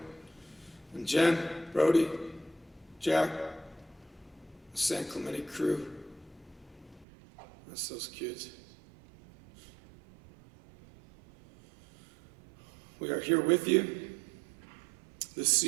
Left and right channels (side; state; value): left; drops out; at 7.1 s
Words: And Jen, Brody, Jack, the San Clemente crew, that's those kids. We are here with you, the